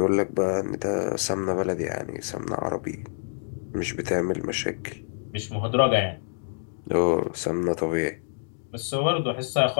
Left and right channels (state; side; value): silent; right; digital silence